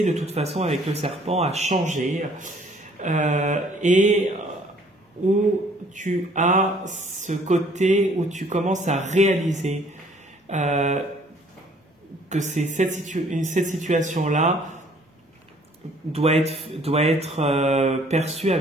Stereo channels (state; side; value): normal; both; correlation 0.59